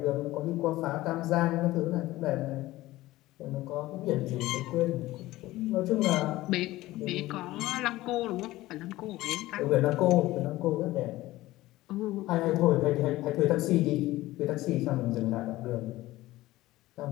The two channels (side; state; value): right; quieter; 17.3 dB